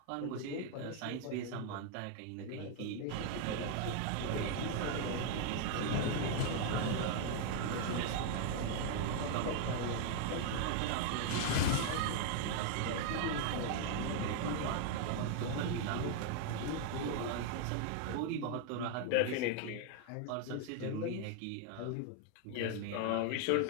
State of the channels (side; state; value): both; different; correlation 0.00